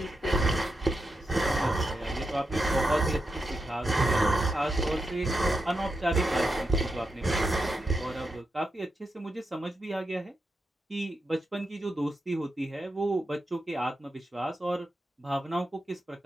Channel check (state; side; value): normal; both; correlation 0.86